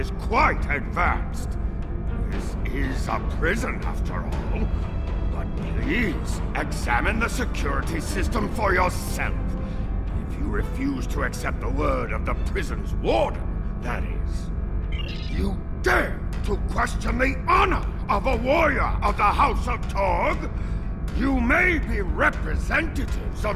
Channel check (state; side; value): identical; both; correlation 1.00